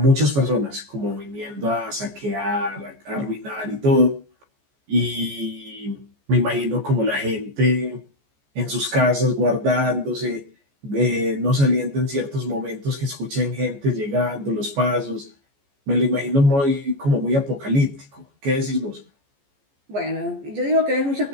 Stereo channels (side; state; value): left; late; 14 ms